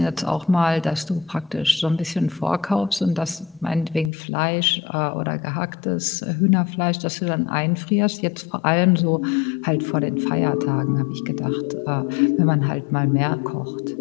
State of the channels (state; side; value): drops out; right; at 4.1 s